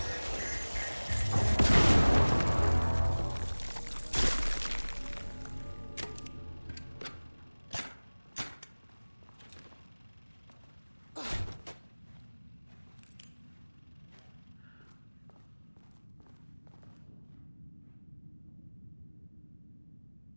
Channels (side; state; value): both; inverted; correlation -1.00